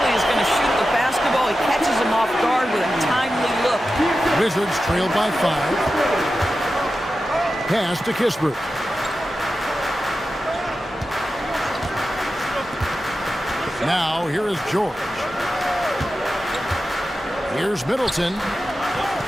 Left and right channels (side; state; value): both; normal; correlation 0.92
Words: is going to shoot the basketball. He catches him off guard with a timely look. Wizards trailed by 5. Pass to Kispert. Now, here is George. Here's Middleton.